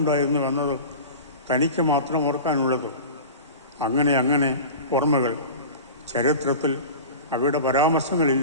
എന്നത് തനിക്ക് മാത്രം ഓർക്കാനുള്ളത്. അങ്ങനെ ഓർമ്മകൾ. ചരിത്രത്തിൽ അവയുടെ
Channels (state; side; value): inverted; both; correlation -0.34